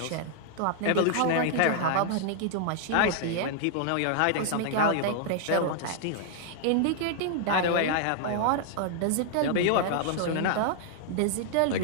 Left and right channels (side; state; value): both; different; correlation -0.01